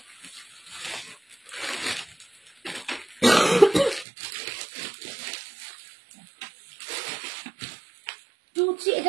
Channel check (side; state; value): left; drops out; at 4.0 s